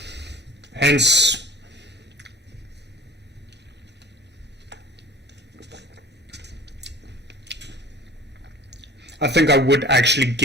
Hence, I think I would actually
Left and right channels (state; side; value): normal; both; correlation 0.46